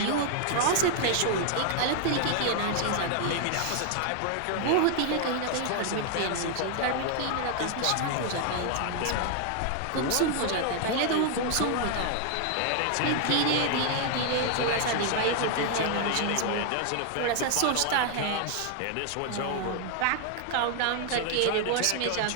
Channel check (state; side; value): different; both; correlation 0.00